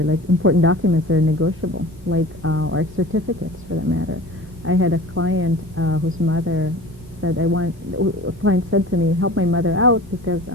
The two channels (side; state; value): both; normal; correlation 0.39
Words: like important documents that are negotiable, like or certificates for that matter. I had a client whose mother said, a client said to me, help my mother out because